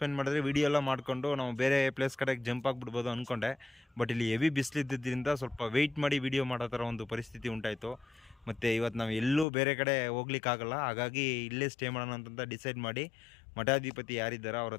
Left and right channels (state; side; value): drops out; right; at 9.5 s